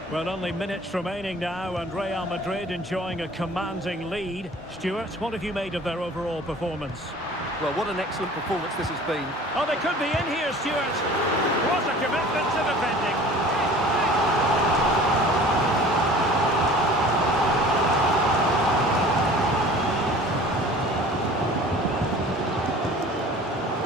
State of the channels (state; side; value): normal; both; correlation 0.45